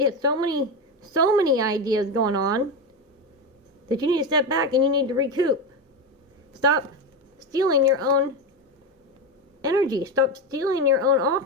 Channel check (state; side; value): normal; both; correlation 0.15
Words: had so many ideas going on that you need to step back and you need to recoup. Stop stealing your own energy. Stop stealing your own